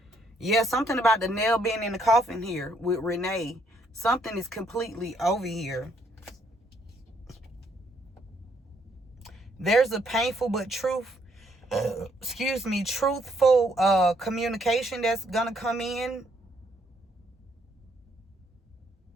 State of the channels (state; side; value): normal; both; correlation 0.70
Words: Yeah, something about the nail being in the coffin here with Renee. Something is completely over here. There's a painful but truthful communication that's gonna come in.